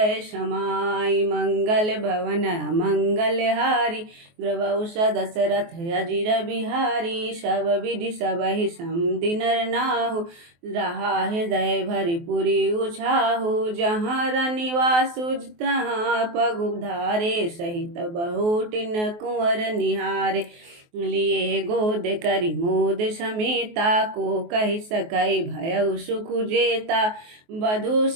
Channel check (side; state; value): left; late; 23 ms